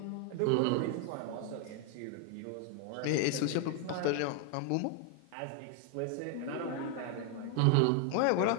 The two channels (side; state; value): both; different; correlation 0.00